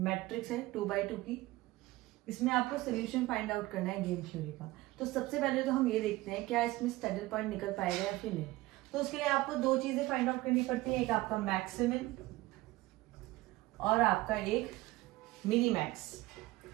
है 2x2 की, इसमें आपको सोल्यूशन फाइंड आउट करना है गेम थ्योरी का। तो सबसे पहले तो हम ये देखते हैं क्या इसमें स्टैडल पॉइंट निकल पाएगा या फिर नहीं। तो उसके लिए आपको दो चीजें फाइंड आउट करनी पड़ती है, एक आपका मैक्सिमम और आपका एक मिनी मैक्स।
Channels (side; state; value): left; quieter; 18.8 dB